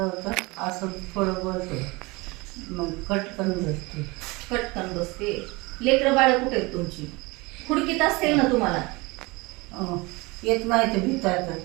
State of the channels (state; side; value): quieter; left; 24.5 dB